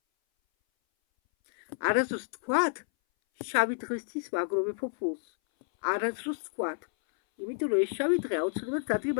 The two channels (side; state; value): right; silent; 58 dB below the other